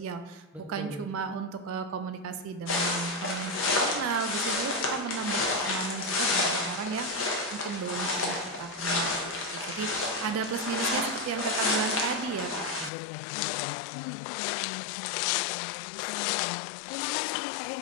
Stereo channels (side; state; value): right; drops out; at 12.9 s